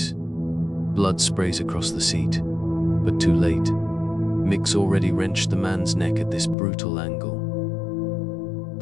Blood sprays across the seat, but too late. Mick's already wrenched the man's neck at this brutal angle.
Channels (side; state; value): right; drops out; at 6.6 s